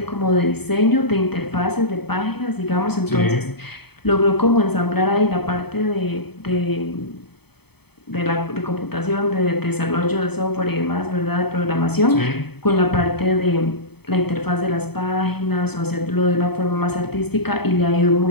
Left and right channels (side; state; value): right; late; 0.97 ms